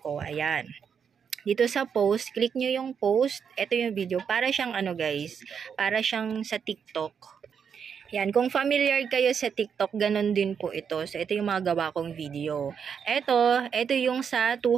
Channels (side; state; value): left; quieter; 7.1 dB